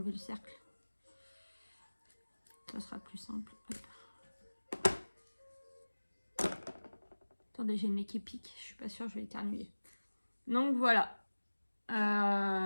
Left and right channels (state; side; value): inverted; both; correlation -1.00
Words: le cercle. Ça sera plus simple. Hop. Attendez, j'ai le nez qui pique. Je suis pas sûre, je vais éternuer. Donc voilà.